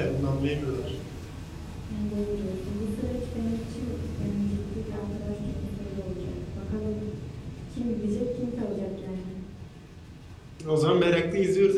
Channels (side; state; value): both; identical; correlation 1.00